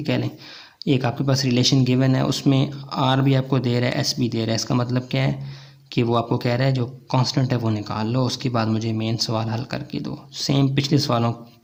कह लें, एक आपके पास रिलेशन गिवन है, उसमें आर भी आपको दे रहा है, एस भी दे रहा है। इसका मतलब क्या है कि वो आपको कह रहा है जो कांस्टेंट है वो निकाल लो, उसके बाद मुझे मेन सवाल हल करके दो। सेम पिछले सवालों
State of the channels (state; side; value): identical; both; correlation 1.00